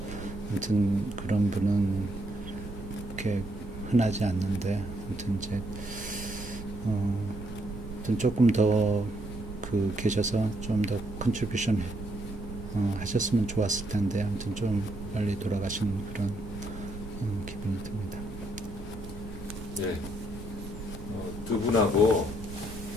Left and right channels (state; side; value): normal; both; correlation 0.73